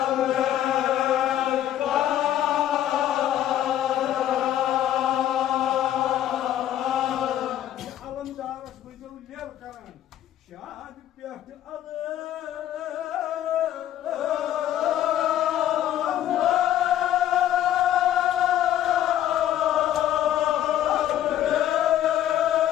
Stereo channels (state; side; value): quieter; right; 11.8 dB